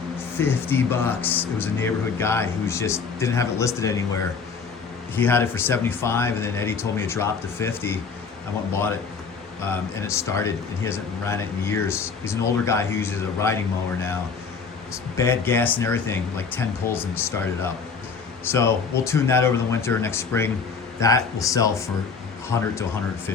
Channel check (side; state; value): right; quieter; 5.4 dB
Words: $50. It was a neighborhood guy who just didn't have it listed anywhere. He had it for $75, and then Eddie told me it dropped to $50. I went and bought it, and it started, and he hasn't ran it in years. He's an older guy who uses a riding mower now. It's bad gas and everything, like 10 pulls and started up. So we'll tune that over the winter. Next spring, that will sell for $100 to